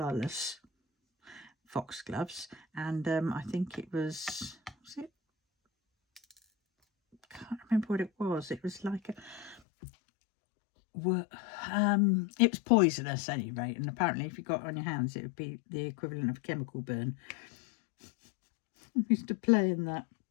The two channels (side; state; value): right; drops out; at 9.6 s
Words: foxgloves. And I think it was it? I can't remember what it was. It was like it was poisonous at any rate. And apparently if you got it on your hands, it would be the equivalent of a chemical burn. I used to play in that.